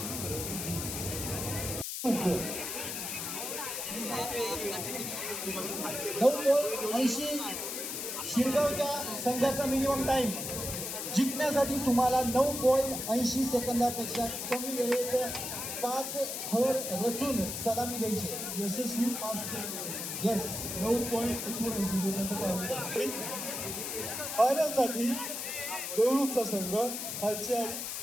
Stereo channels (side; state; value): left; noise; hiss, 4 dB below the sound